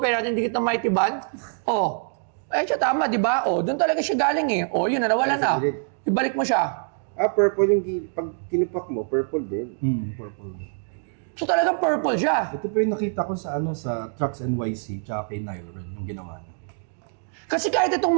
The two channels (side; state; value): left; silent; 62 dB below the other